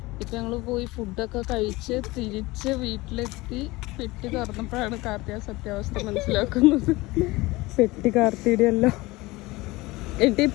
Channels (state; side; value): quieter; right; 21.1 dB